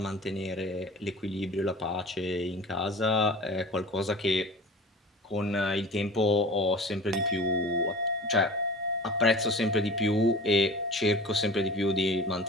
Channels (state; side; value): normal; both; correlation 0.39